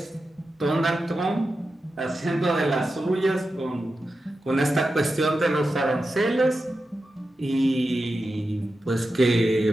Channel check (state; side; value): normal; both; correlation 0.91